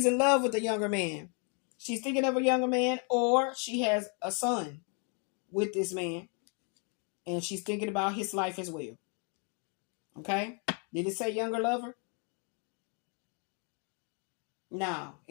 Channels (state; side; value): quieter; right; 38.2 dB